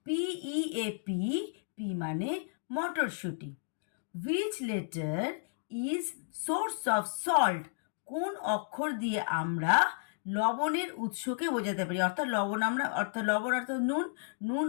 পি মানে মটরশুঁটি। Which letter is source of salt? কোন অক্ষর দিয়ে আমরা লবণের উৎসকে বোঝাতে পারি? অর্থাৎ লবণ অর্থাৎ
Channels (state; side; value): silent; right; digital silence